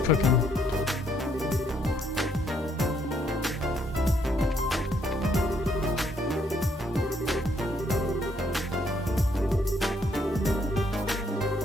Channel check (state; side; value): normal; both; correlation 0.70